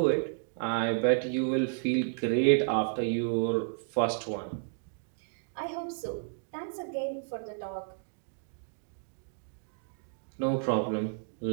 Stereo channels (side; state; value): left; silent; digital silence